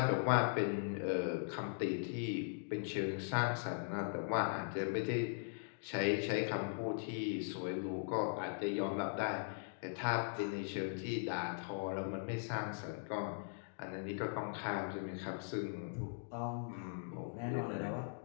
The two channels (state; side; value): silent; right; digital silence